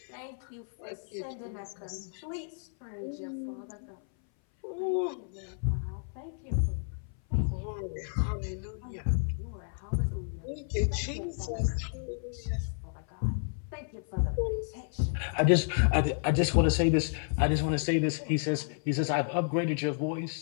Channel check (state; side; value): silent; right; 57 dB below the other